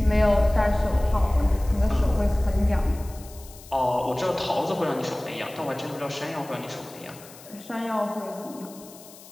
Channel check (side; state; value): left; noise; hiss, 20 dB below the sound